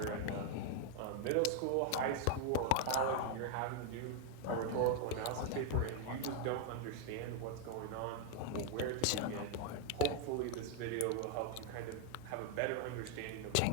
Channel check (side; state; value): both; different; correlation 0.00